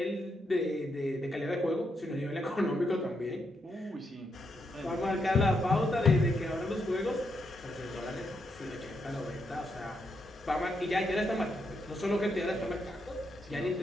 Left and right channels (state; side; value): normal; both; correlation 0.80